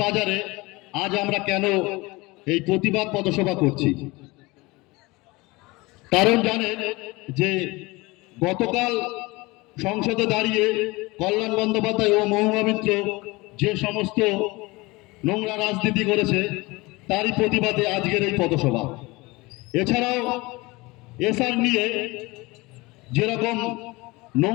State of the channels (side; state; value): right; quieter; 22.9 dB